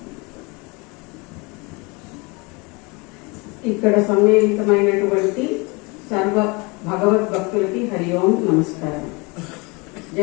ఇక్కడ సమ్మేళితమైనటువంటి సర్వ భగవద్భక్తులకి హరి ఓం నమస్కారం.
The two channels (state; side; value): quieter; right; 27.8 dB